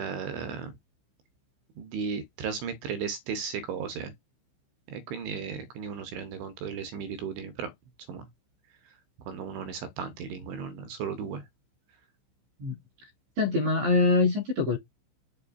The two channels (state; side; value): late; left; 15 ms